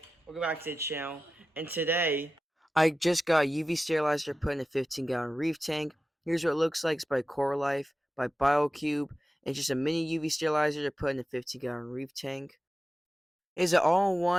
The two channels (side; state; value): both; normal; correlation 0.94